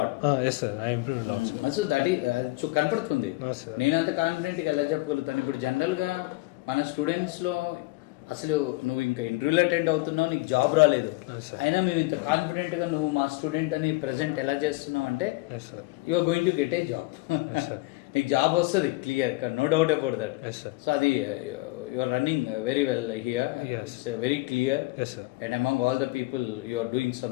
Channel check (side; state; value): right; quieter; 21.6 dB